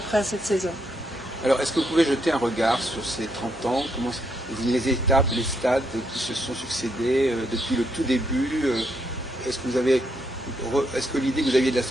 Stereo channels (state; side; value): normal; both; correlation 0.77